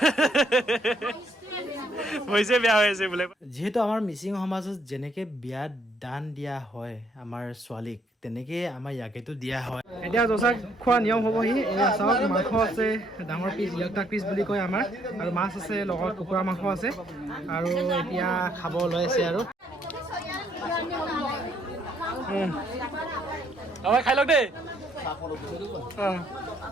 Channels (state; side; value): normal; both; correlation 0.69